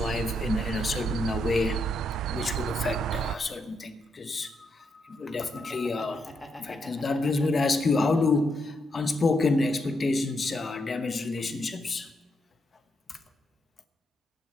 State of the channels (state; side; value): normal; both; correlation 0.79